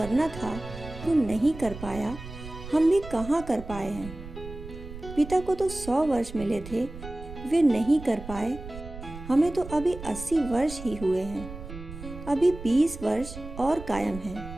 था वो नहीं कर पाया, हम भी कहाँ कर पाए हैं। पिता को तो 100 वर्ष मिले थे, वे नहीं कर पाए। हमें तो अभी 80 वर्ष ही हुए हैं। अभी 20 वर्ष और कायम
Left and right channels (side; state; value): right; noise; rumble, 12 dB below the sound